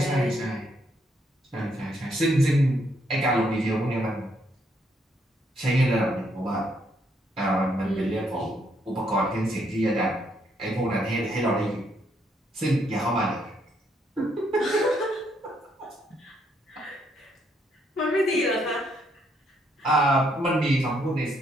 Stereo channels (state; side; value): normal; both; correlation 0.73